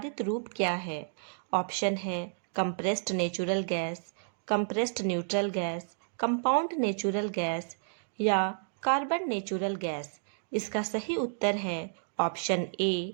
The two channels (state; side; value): silent; left; digital silence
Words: रूप क्या है? ऑप्शन है compressed natural gas, compressed neutral gas, compound natural gas या कार्बन नेचुरल गैस। इसका सही उत्तर है ऑप्शन ए,